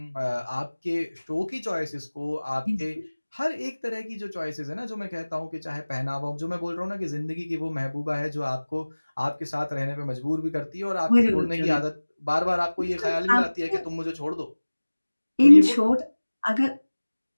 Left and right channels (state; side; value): inverted; both; correlation -1.00